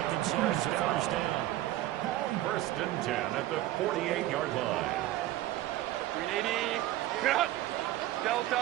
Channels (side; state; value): left; quieter; 15.1 dB